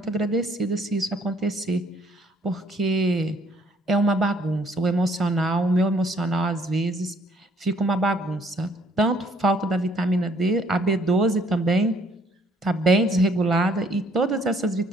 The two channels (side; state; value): both; normal; correlation 0.63